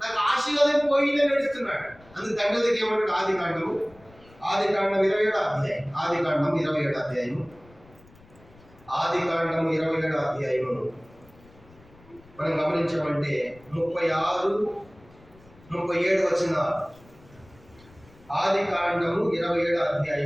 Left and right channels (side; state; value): left; noise; rumble, 26 dB below the sound